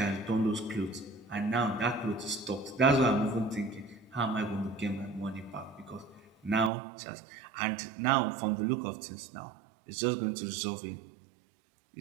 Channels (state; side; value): drops out; left; at 6.7 s